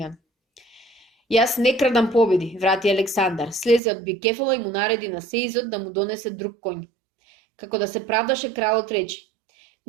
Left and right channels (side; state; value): left; drops out; at 3.8 s